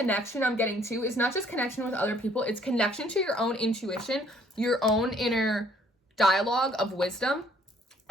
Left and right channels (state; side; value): normal; both; correlation 0.62